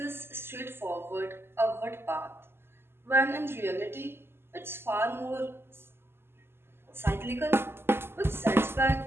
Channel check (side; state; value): left; late; 0.12 ms